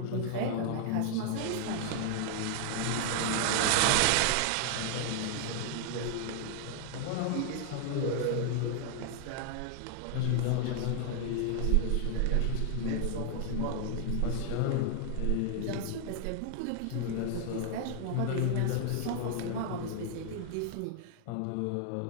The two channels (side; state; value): both; different; correlation 0.00